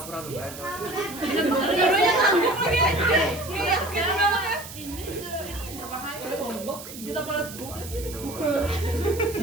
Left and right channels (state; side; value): noise; right; hiss, 13 dB below the sound